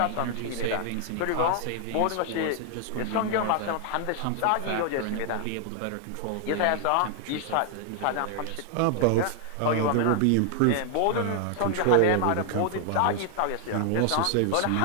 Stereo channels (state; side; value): different; both; correlation 0.00